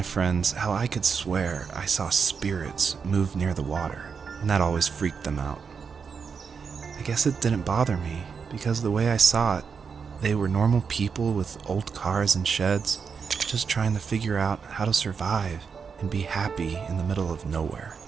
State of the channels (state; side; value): quieter; left; 5.9 dB